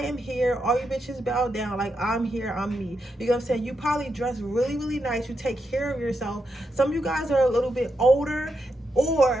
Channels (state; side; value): normal; both; correlation 0.84